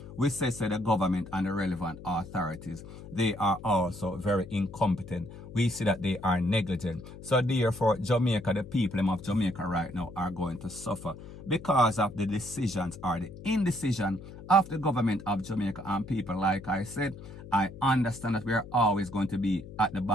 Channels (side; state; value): left; noise; hum, 14 dB below the sound